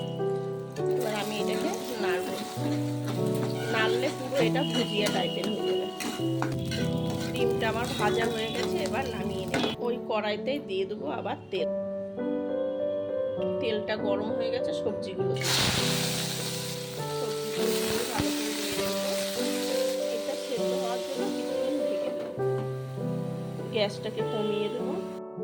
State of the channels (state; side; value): identical; both; correlation 1.00